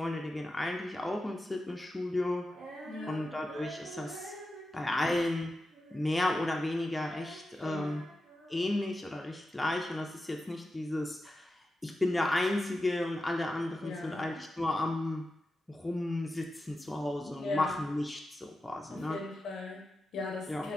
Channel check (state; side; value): normal; both; correlation 0.91